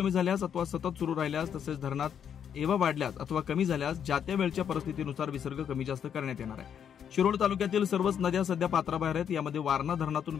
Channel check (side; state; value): right; quieter; 8.4 dB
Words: झाल्यास अथवा सतत सुरू राहिल्यास तसेच धरणात एव्हा वाढल्यास अथवा कमी झाल्यास ज्या त्या वेळच्या परिस्थितीनुसार विसर्ग कमी जास्त करण्यात येणार आहे। शिरोळ तालुक्यातील सर्वच नद्या सध्या पात्राबाहेर आहेत। यामध्ये वारणा धरणातून